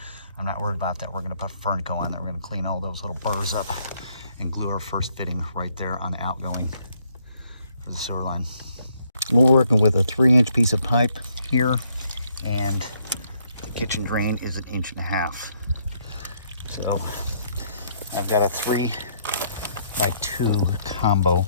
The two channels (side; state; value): both; inverted; correlation -0.70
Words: I'm not worried about that. We're gonna put Fernco on there. We're gonna clean all those little burrs up and glue our first fitting right there on the outgoing for the sewer line. We're working with a 3-inch piece of pipe here, and the kitchen drain is 1.5 inches. So I've got a 3x2 combo